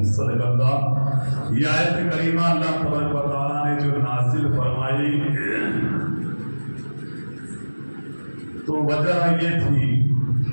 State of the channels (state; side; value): inverted; both; correlation -1.00